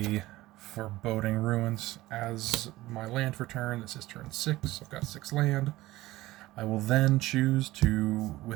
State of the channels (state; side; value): quieter; left; 17.6 dB